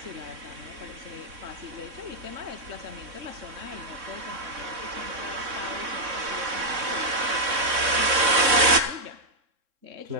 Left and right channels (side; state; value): left; late; 3.6 ms